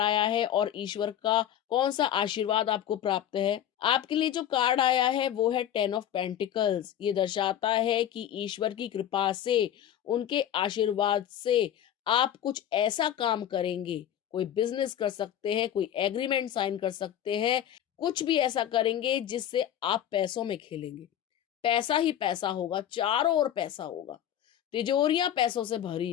आया है और ईश्वर का कौन सा आशीर्वाद आपको प्राप्त है। आपके लिए जो कार्ड आया है वो है 10 ऑफ पेंटिकल्स। ये दर्शाता है कि ईश्वर की कृपा से, उनके आशीर्वाद से आप कुछ ऐसा काम करेंगे, कोई बिजनेस कर सकते हैं, कोई एग्रीमेंट साइन कर सकते हैं, कुछ भी ऐसा करेंगे जिससे आप पैसों में खेलेंगे। पैसा ही पैसा होगा, चारों ओर पैसा होगा, तिजोरियां पैसों से भरी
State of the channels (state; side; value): quieter; right; 10.6 dB